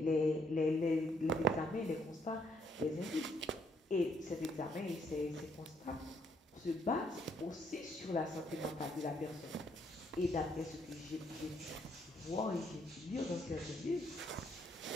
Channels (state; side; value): normal; both; correlation 0.70